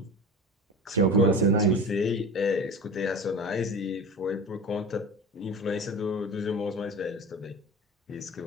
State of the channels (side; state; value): both; normal; correlation 0.32